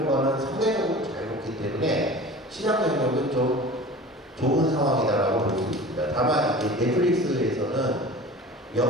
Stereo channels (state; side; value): normal; both; correlation 0.39